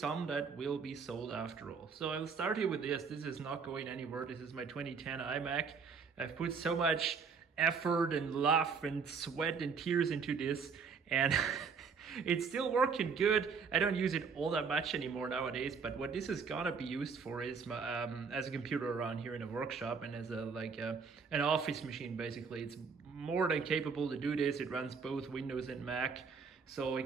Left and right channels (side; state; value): left; quieter; 5.5 dB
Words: that will be sold after all. So I'll start here with this. This is not going anywhere. This is my 2010 iMac. I've put so much effort and love and sweat and tears into this, and it's still working good. I don't use it all that much anymore nowadays, but what this is gonna be used for is as a computer around here in a workshop and as an office machine. Basically, it's more than capable to do this. It runs both Windows and Mac, so it